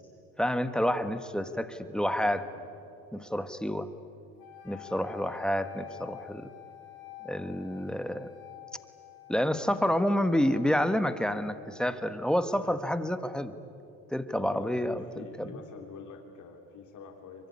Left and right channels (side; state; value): both; normal; correlation 0.90